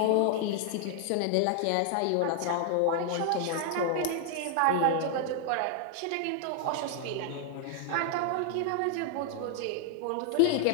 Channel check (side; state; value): both; different; correlation 0.00